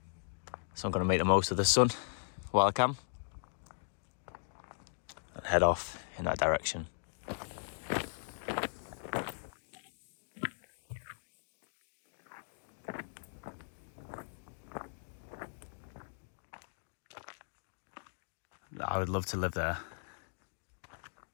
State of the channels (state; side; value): silent; right; digital silence